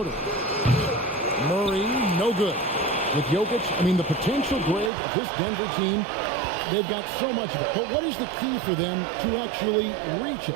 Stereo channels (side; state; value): left; drops out; at 4.9 s